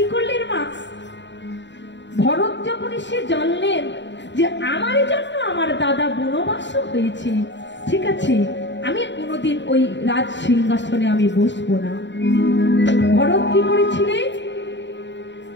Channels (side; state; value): right; late; 0.53 ms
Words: করলেন মা, ভরত যখন সে জানলেন যে আমার জন্য আমার দাদা বনবাস হয়েছে, ঠিক আছে আমি কোনোদিন ওই রাজ সিংহাসনে আমি বসবো না। ভরত কি করেছিলেন,